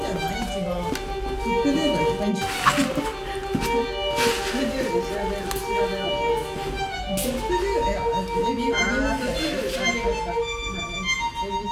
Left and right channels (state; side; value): identical; both; correlation 1.00